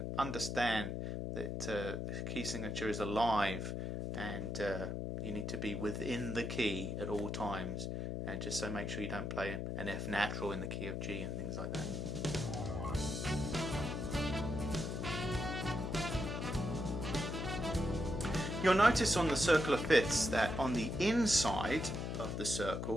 understand that the key signature is alive, and you need to be within the key at all times. And just so make sure you don't play an F natural in the key of G and things like that. You'll notice on the circular fifths that on the inside of the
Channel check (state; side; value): noise; left; hum, 3 dB below the sound